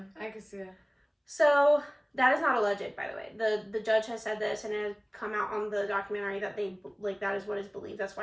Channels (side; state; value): both; identical; correlation 1.00